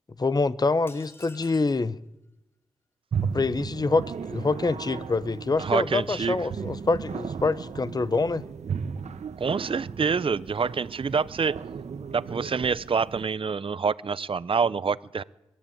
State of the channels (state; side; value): normal; both; correlation 0.65